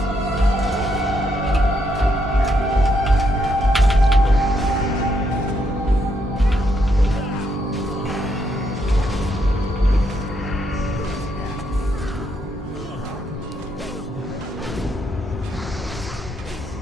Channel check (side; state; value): both; normal; correlation 0.76